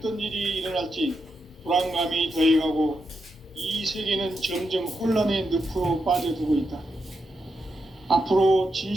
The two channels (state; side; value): normal; both; correlation 0.85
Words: 일이 일어날지 불안감이 더해가고 이 세계는 점점 혼란의 늪으로 빠져들고 있다. 앞으로